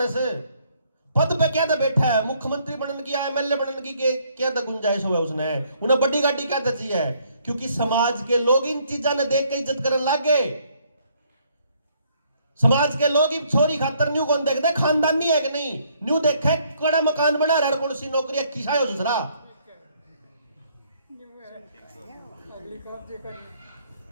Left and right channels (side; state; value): both; inverted; correlation -0.66